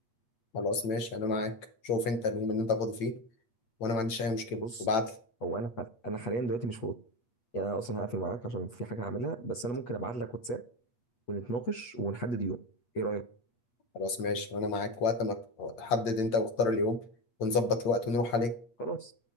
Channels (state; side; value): late; right; 8.9 ms